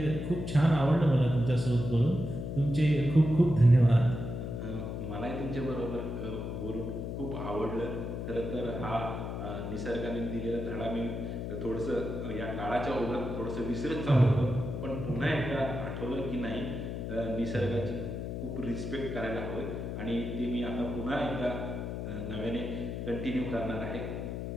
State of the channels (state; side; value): noise; left; hum, 5 dB below the sound